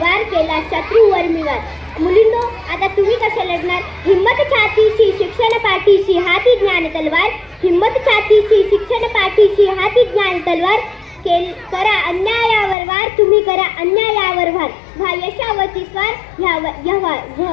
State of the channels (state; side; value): drops out; right; at 12.8 s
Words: केला शत्रूवर मी वार। मुलींनो, आता तुम्ही कशा लढणार? हिम्मत छातीशी शिक्षण पाठीशी हाती ज्ञान तलवार, हिम्मत छातीशी शिक्षण पाठीशी हाती ज्ञान तलवार, करा अन्यायावर वार, तुम्ही करा अन्यायावर वार, व्हा यशावरती स्वार,